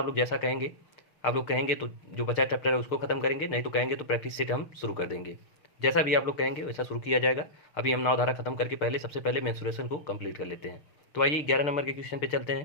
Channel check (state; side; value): late; right; 6.5 ms